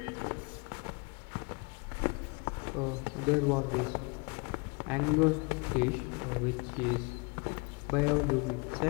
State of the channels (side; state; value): right; quieter; 30.9 dB